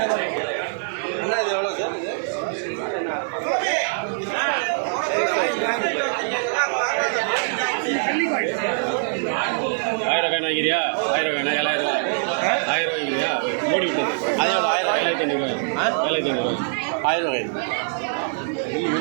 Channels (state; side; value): silent; left; digital silence